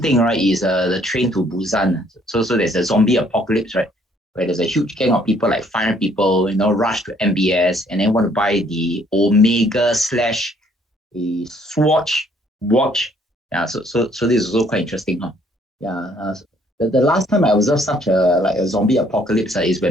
thing, right, is the train to Busan. So there's a zombie apocalypse, right, where there's a huge gang of people, like 500 people, rush to MBS and then want to buy the Omega slash a Swatch watch. Yeah, so this is also quite interesting, huh? Yeah. The last time I observed such a zombie apocalypse is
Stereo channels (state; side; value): normal; both; correlation 0.64